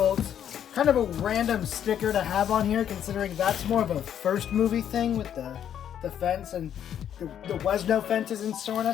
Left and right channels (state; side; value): quieter; right; 9.6 dB